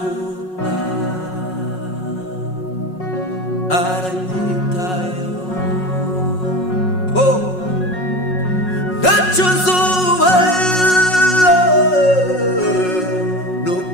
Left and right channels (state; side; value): late; right; 5.4 ms